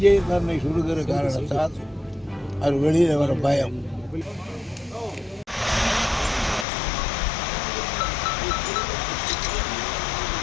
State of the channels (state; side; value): drops out; right; at 6.7 s